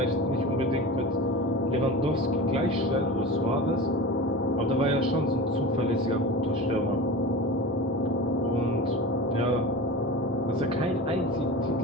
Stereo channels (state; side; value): normal; both; correlation 0.31